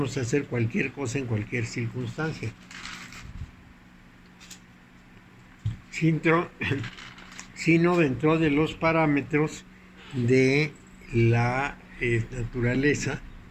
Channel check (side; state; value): both; identical; correlation 1.00